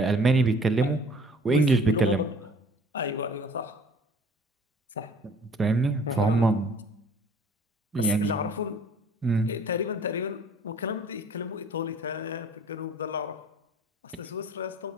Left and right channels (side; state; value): both; normal; correlation 0.52